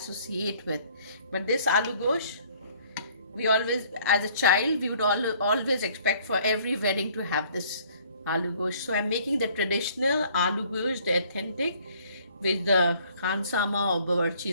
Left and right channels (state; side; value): inverted; both; correlation -0.58